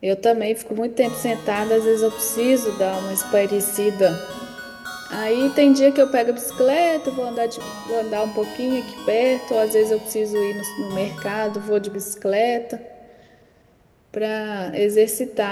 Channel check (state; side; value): identical; both; correlation 1.00